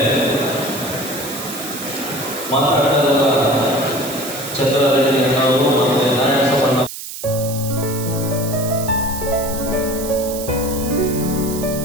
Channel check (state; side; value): noise; right; hiss, 9 dB below the sound